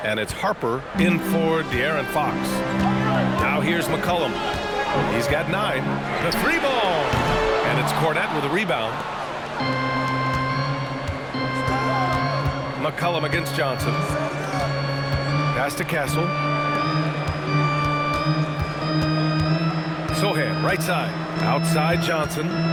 And it's Harper in for De'Aaron Fox. Now here's McCollum. He's got 9. The three ball. And it's Cornette with a rebound. McCollum against Johnson. Pass to Castle. Sohan, right side. Outside Johnson.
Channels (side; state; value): both; identical; correlation 1.00